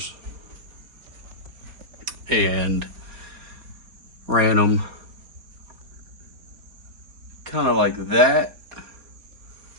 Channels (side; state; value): left; late; 3.9 ms